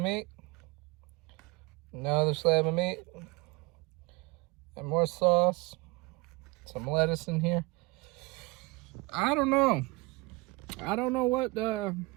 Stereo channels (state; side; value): quieter; left; 25.1 dB